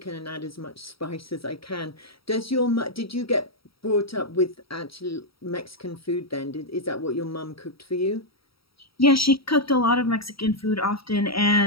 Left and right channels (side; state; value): right; late; 0.75 ms